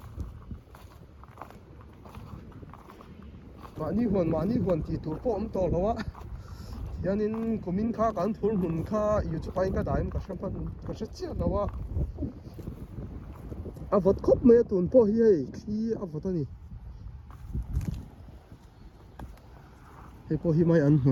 mani huan ti tur po om to lawa hianin kumin kha kan thul mun kha YouTube pa in ka daim ka hram pan ka hre chia lawa avot khop me tun po hi hei khi avot ani hei po hi mai an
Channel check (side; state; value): both; identical; correlation 1.00